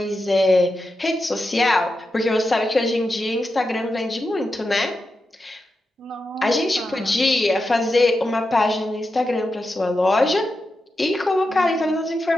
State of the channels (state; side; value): normal; both; correlation 0.89